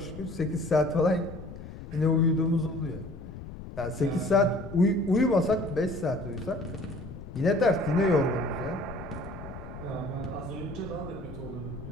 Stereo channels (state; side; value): noise; left; rumble, 12 dB below the sound